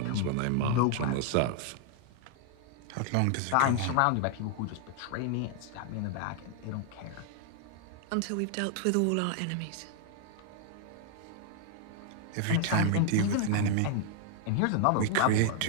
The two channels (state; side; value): different; both; correlation 0.00